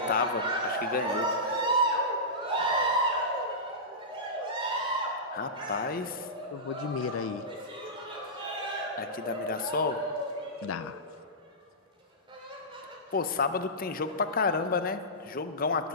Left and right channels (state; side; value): normal; both; correlation -0.16